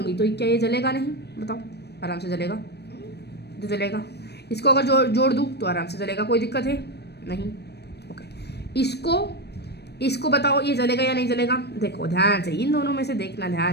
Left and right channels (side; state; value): right; late; 0.48 ms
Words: तो क्या ये जलेगा नहीं? बताओ, आराम से जलेगा, तो जलेगा। इसको अगर जोड़ दूँ तो आराम से जलेगा, कोई दिक्कत है नहीं। ओके, इसको बताओ ये जलेगा या नहीं जलेगा? देखो ध्यान से, इन दोनों में से देखना